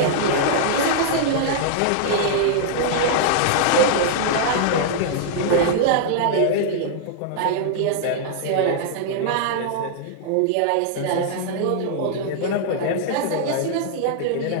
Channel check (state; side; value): different; both; correlation -0.01